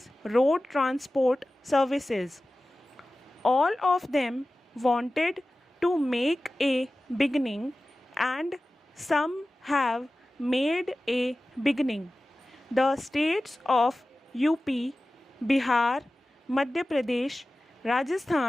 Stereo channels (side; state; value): both; normal; correlation 0.96